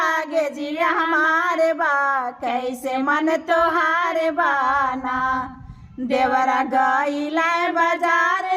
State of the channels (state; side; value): identical; both; correlation 1.00